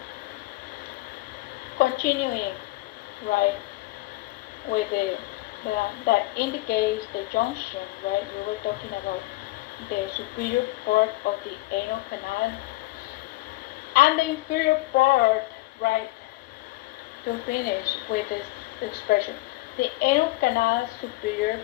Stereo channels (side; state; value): right; quieter; 20.2 dB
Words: Continuing, right, with that indicates the junction, right? We were talking about the superior part of the anal canal and the inferior part, right? To finish with this expression, the anal canal superior